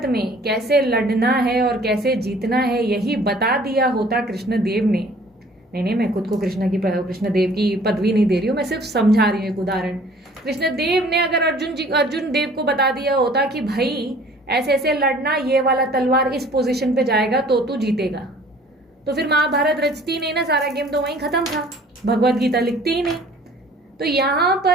में कैसे लड़ना है और कैसे जीतना है यही बता दिया होता कृष्ण देव ने, नहीं मैं खुद को कृष्ण देव की पदवी नहीं दे रही हूँ, मैं सिर्फ समझा रही हूँ एक उदाहरण। कृष्ण देव ने अगर अर्जुन देव को बता दिया होता कि भाई ऐसे ऐसे लड़ना, ये वाला तलवार इस पोजीशन पे जाएगा तो तू जीतेगा। तो फिर महाभारत रचती नहीं ना, सारा गेम तो वहीं खत्म था, भगवत गीता लिखती ही नहीं। तो यहाँ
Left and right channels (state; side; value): normal; both; correlation 0.52